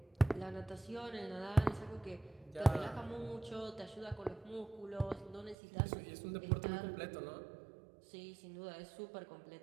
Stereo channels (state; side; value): drops out; left; at 5.6 s